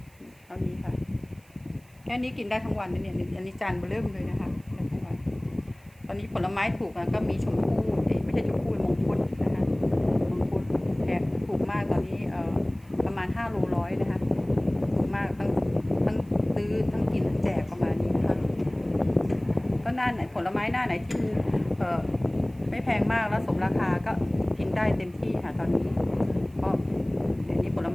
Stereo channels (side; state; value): right; noise; hiss, 30 dB below the sound